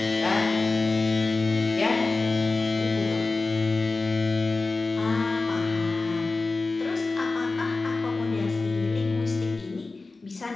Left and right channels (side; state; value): right; quieter; 3.6 dB